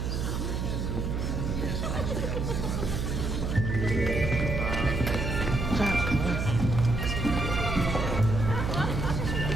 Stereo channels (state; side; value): noise; right; hum, 1 dB below the sound